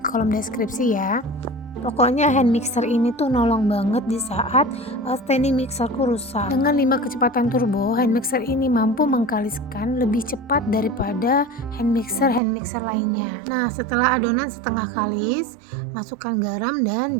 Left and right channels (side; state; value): left; drops out; at 12.4 s